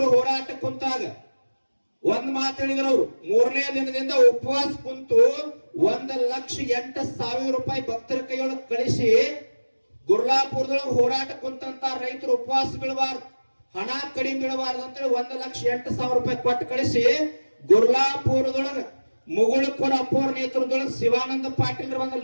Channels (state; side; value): inverted; both; correlation -1.00